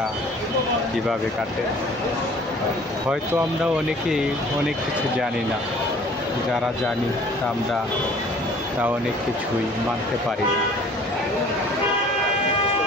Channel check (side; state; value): both; normal; correlation 0.51